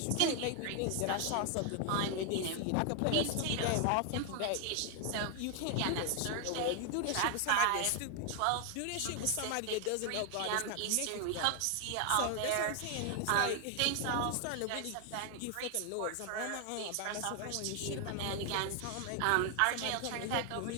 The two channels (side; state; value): both; different; correlation 0.00